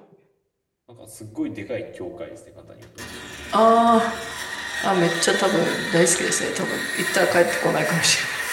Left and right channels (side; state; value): both; identical; correlation 1.00